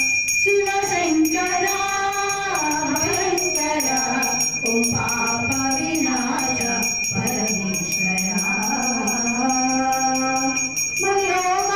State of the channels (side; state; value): left; noise; rumble, 20 dB below the sound